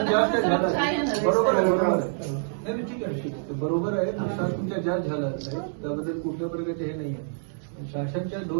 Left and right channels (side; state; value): left; silent; digital silence